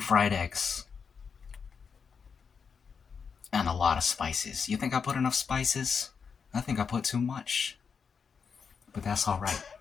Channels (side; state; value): right; quieter; 6.1 dB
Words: eggs. And a lot of spices. You think I put enough spices? I think I put too much. But that's alright.